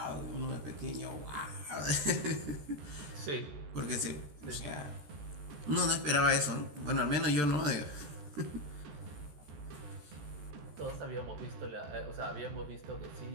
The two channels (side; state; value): left; late; 14 ms